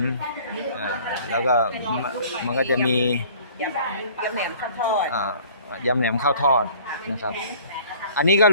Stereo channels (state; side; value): inverted; both; correlation -0.51